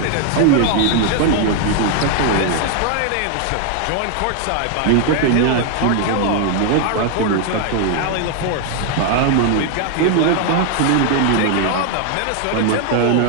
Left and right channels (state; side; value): different; both; correlation 0.00